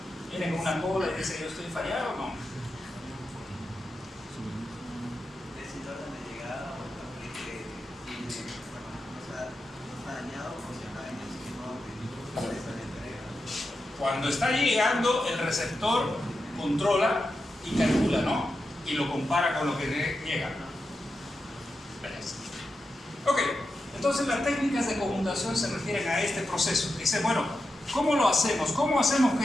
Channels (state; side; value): normal; both; correlation 0.89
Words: ¿Viene con una cola y dice yo estoy fallado o no? Decir orden de llegada o también que tiene, o sea, no está dañado o si está en el sistema de entrega. Cuando está llegando, el receptor controla y calcula, ¿no? Y lo compara con lo que llega. Ok, entonces las técnicas de conmutación se refieren a este proceso. Dice, bueno, ¿cómo lo hacemos? ¿Cómo hacemos